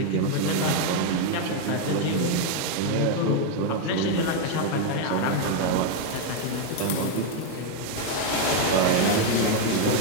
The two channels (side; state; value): both; different; correlation 0.01